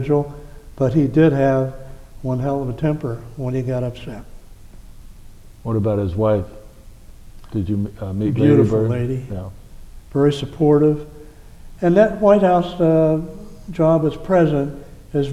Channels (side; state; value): both; identical; correlation 1.00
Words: but he did have one hell of a temper when he got upset. What about his wife? Did you meet? Beautiful Lady Bird? lady, Yeah. very supportive. And that White House job as president is